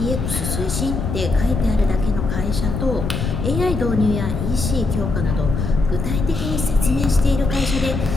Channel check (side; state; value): left; noise; rumble, 3 dB below the sound